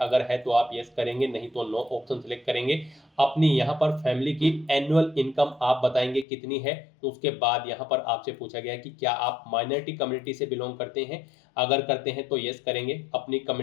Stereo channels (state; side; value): drops out; right; at 6.2 s